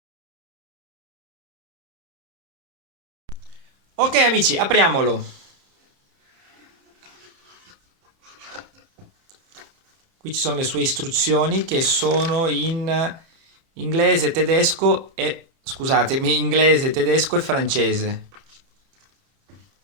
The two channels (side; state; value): left; late; 30 ms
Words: Ok amici, apriamolo. Qui ci sono le sue istruzioni che sono in inglese, tedesco e scusatemi, inglese, tedesco e francese.